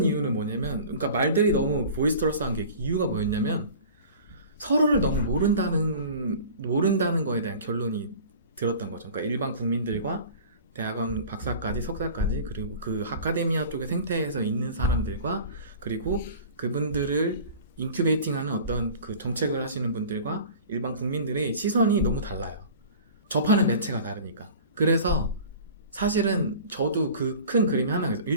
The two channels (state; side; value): inverted; both; correlation -0.42